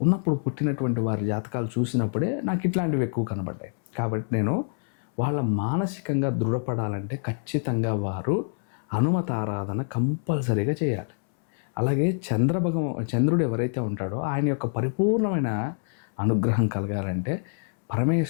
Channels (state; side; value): silent; right; 61 dB below the other